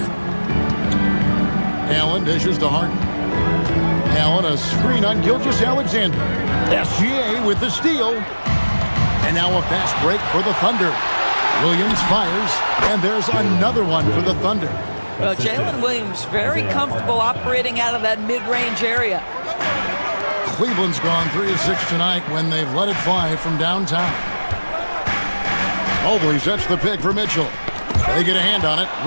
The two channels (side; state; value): both; inverted; correlation -1.00